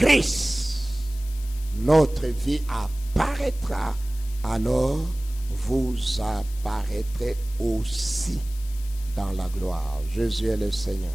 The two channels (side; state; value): left; noise; hiss, 19 dB below the sound